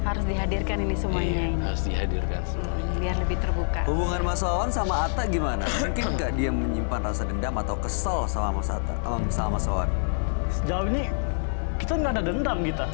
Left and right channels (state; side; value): silent; right; 61 dB below the other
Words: dihadirkan ini semuanya Iya, ini. harus dihadirkan semuanya. Biar lebih terbuka. Hubungan Mas Wawan sama Atta gimana? Mungkin nggak dia menyimpan rasa dendam atau kesel sama Mas Atta, sama Mas Wawan? Sejauh ini kita nggak ada dendam kita.